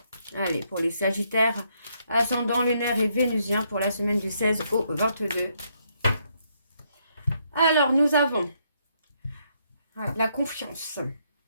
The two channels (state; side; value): inverted; both; correlation -0.74